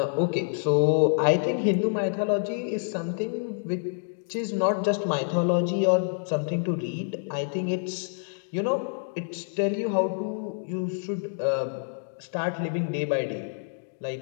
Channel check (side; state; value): right; silent; digital silence